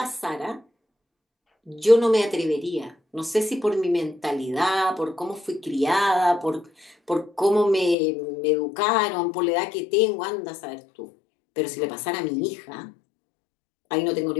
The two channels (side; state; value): right; drops out; at 8.0 s